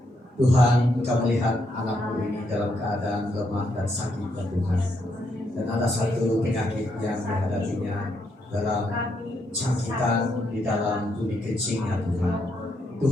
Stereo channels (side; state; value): both; normal; correlation 0.77